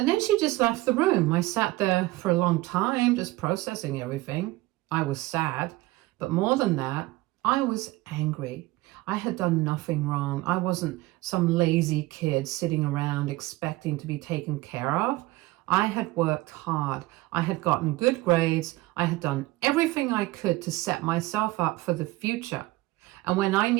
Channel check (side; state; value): left; quieter; 19.4 dB